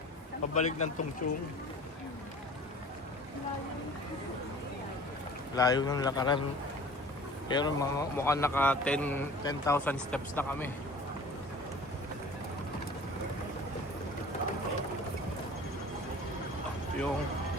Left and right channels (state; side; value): normal; both; correlation 0.44